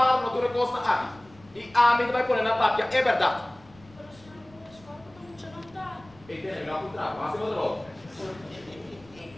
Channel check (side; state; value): left; noise; rumble, 25 dB below the sound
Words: na tua costa aqui. E a mim tu vai pôr na papia, é verdade. E tem na putra, mas eu vou.